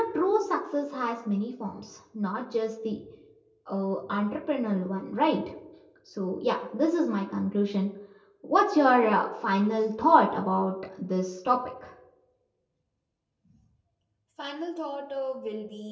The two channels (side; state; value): both; identical; correlation 1.00